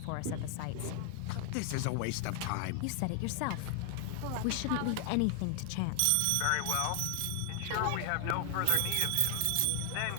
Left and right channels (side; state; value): both; different; correlation 0.00